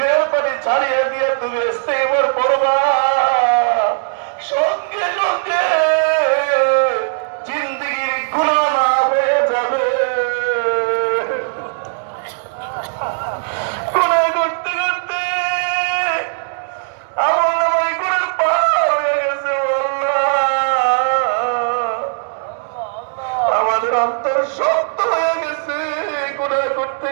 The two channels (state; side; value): silent; left; digital silence